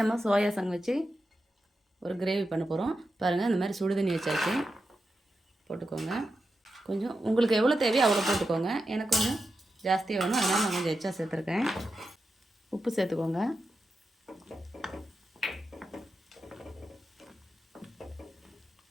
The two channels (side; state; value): both; normal; correlation 0.89